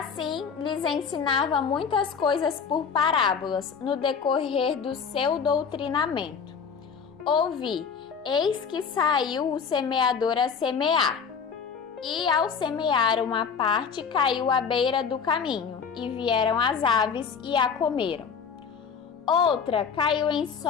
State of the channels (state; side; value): quieter; right; 6.3 dB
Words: lhes ensinava muitas coisas por parábolas, no decorrer do seu doutrinamento. Ouvi, eis que saiu o semeador a semear. E ao semear uma parte, caiu à beira do caminho, e vieram as aves e a comeram. Outra caiu em